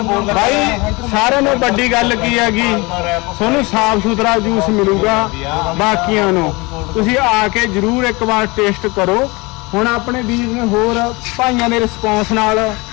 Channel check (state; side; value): quieter; right; 25.3 dB